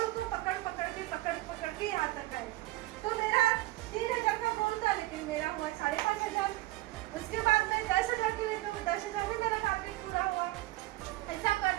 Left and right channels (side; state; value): left; quieter; 18.6 dB